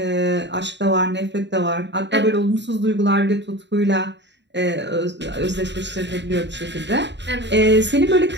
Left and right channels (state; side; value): late; left; 0.52 ms